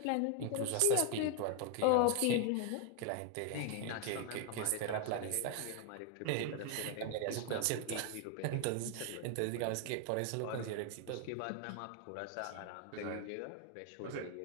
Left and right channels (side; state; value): both; different; correlation 0.01